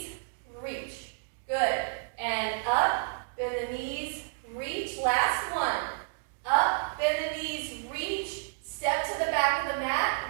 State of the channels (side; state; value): left; silent; digital silence